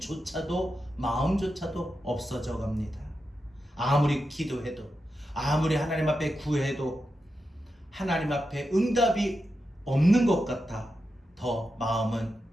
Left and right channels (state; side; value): normal; both; correlation 0.89